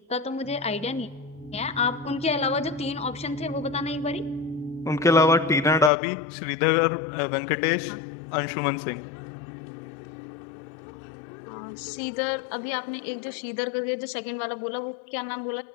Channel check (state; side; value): drops out; right; at 5.9 s